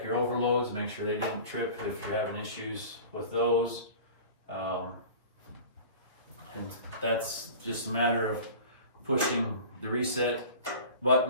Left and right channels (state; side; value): inverted; both; correlation -0.39